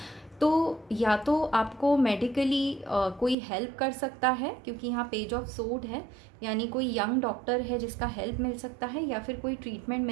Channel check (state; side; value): drops out; left; at 3.4 s